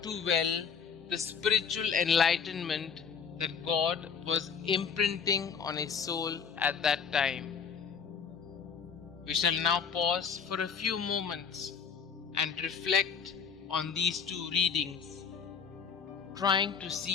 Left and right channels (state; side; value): quieter; right; 6.5 dB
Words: too well the spiritual enlightenment that God was imprinting on his soul at that time. We shall now pause for a few moments and reflect on these two readings, trying to